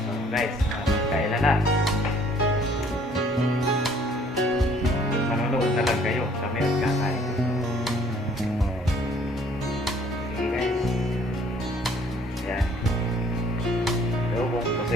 Guys, kailan na? Manonood na lang kayo. Kami ang kakain. Sige guys. Yan. Adobong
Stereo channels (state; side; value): normal; both; correlation 0.59